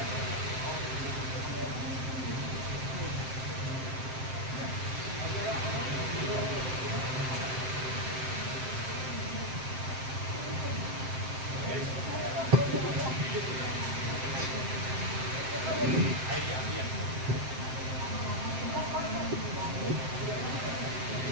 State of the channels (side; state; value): left; late; 7.6 ms